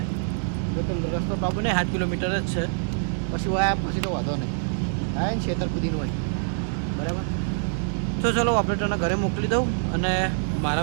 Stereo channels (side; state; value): left; silent; digital silence